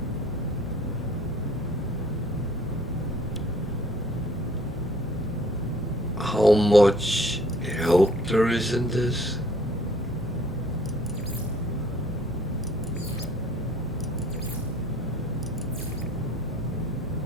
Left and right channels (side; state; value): both; normal; correlation 0.56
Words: how much help there is in this.